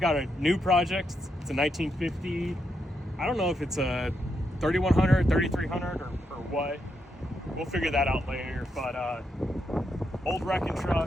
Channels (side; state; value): both; normal; correlation 0.81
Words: got a new project. It's a 1950. I don't know if it's a 3100, 3300, or what. We'll figure that out later, but old wrecking